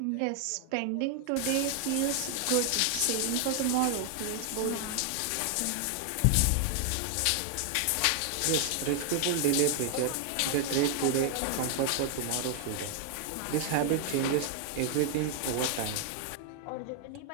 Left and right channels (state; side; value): different; both; correlation 0.00